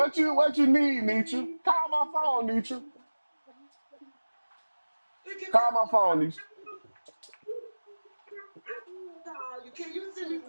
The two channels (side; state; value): both; inverted; correlation -1.00